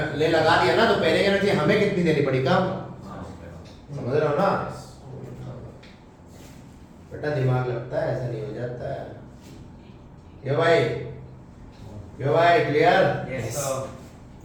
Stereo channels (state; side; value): identical; both; correlation 1.00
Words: ले लगा दिया ना, तो पेयरिंग एनर्जी हमें कितनी देनी पड़ी? कम। समझ रहे हो ना? बेटा दिमाग लगता है, ऐसा नहीं हो जाता है। ये भाई क्लियर? Yes,